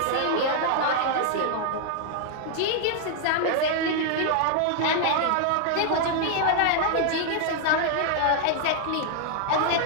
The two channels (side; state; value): both; different; correlation 0.00